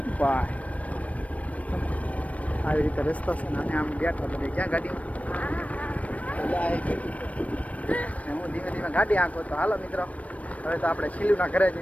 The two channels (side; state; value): right; late; 0.067 ms